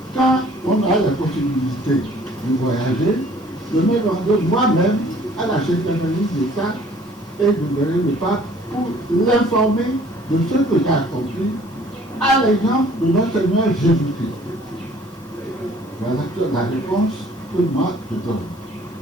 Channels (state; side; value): normal; both; correlation 0.55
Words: Quand on a la possibilité de voyager, je me rends moi-même à la Secrétaire d'État et de verrai le pape pour l'informer de ce que j'ai accompli à l'exemple de notre Seigneur Jésus-Christ. Voilà la réponse que moi je donne.